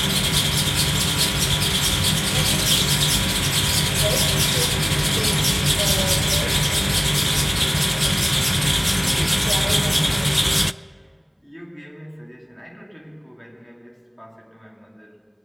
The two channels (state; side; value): identical; both; correlation 1.00